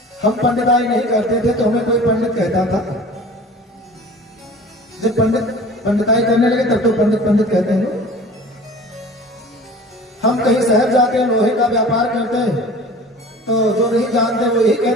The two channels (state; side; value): normal; both; correlation 0.42